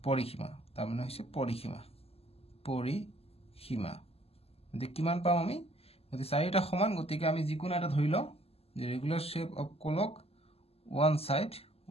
পৰিসীমা তাৰ মানে হৈছে পৰিসীমা গতিকে কিমান পাম আমি গতি চাৰিটা সমান গতিকে আমি যিকোনো এটা ধৰি লওঁ যে regular shape of clock one side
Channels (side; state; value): right; late; 0.29 ms